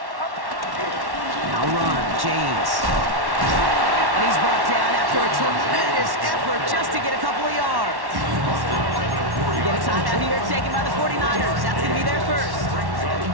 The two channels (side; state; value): left; late; 1.1 ms